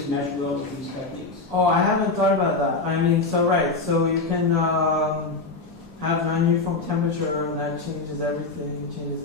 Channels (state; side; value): quieter; right; 3.7 dB